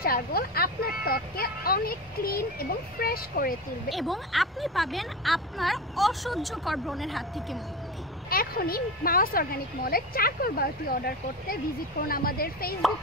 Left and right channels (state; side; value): normal; both; correlation 0.24